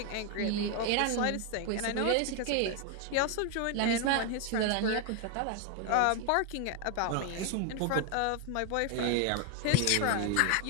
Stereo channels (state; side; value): different; both; correlation 0.01